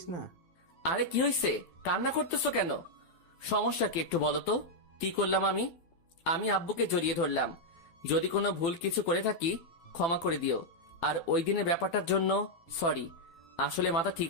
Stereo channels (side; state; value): right; late; 12 ms